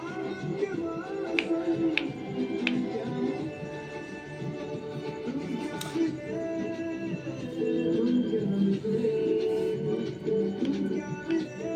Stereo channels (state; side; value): identical; both; correlation 1.00